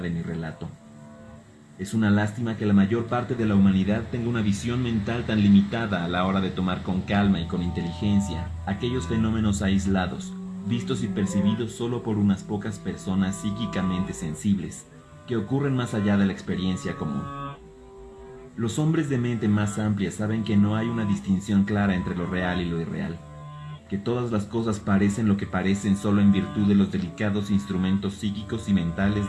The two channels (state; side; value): identical; both; correlation 1.00